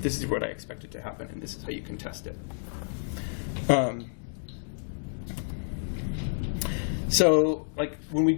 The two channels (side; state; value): right; silent; digital silence